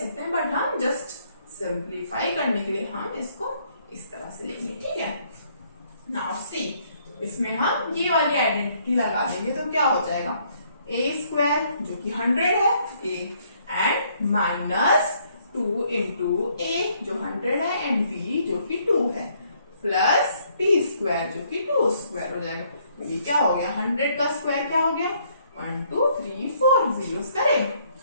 हैं, बट हम जस्ट सिंप्लीफाई करने के लिए हम इसको इस तरह से लेंगे, ठीक है। नाउ सी, इसमें हम ये वाली आइडेंटिटी लगा देंगे तो क्या हो जाएगा a² जो कि 100 है a एंड -2 * a जो 100 है एंड b जो कि 2 है प्लस b² जो कि 2² हो जाएगा। तो ये क्या हो गया 100 का स्क्वायर क्या हो गया 1 2 3 4 जीरोस करें,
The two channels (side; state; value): both; inverted; correlation -0.67